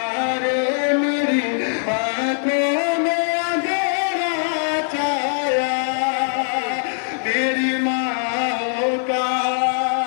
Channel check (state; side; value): silent; right; 65 dB below the other